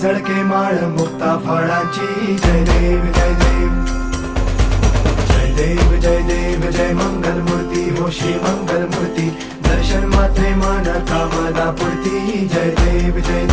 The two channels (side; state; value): both; identical; correlation 1.00